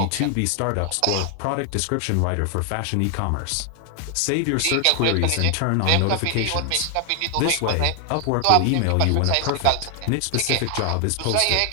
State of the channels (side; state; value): both; different; correlation 0.00